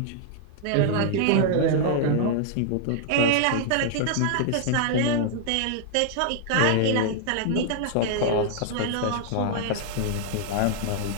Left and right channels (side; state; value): both; different; correlation -0.01